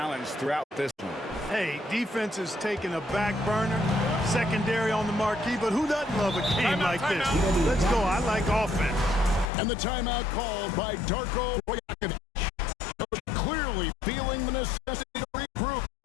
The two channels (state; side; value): drops out; right; at 9.5 s